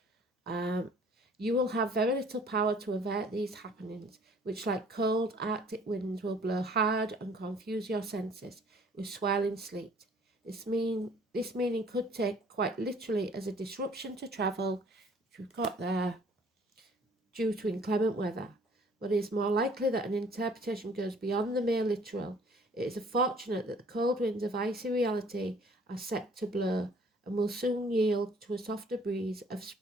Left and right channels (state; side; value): normal; both; correlation 0.56